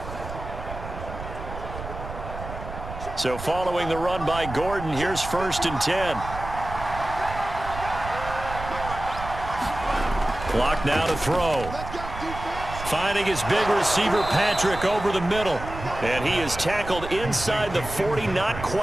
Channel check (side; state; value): right; noise; rumble, 10 dB below the sound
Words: So following the run by Gordon, here's 1st and 10. Clock now to throw. Finding his big receiver, Patrick, over the middle. And he is tackled inside the 40, not